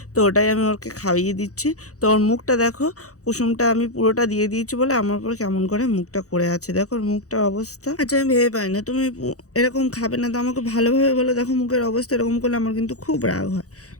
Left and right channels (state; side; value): late; right; 0.66 ms